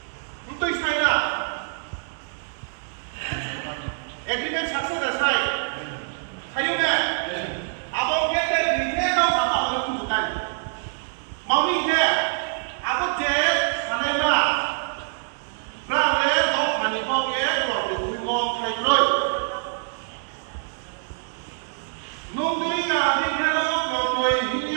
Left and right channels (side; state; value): left; silent; digital silence